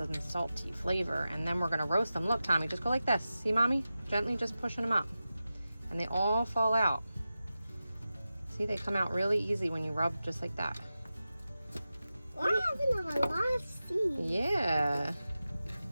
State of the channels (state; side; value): inverted; both; correlation -0.93